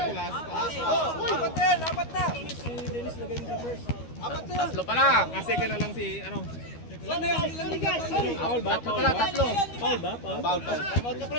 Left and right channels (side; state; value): right; late; 13 ms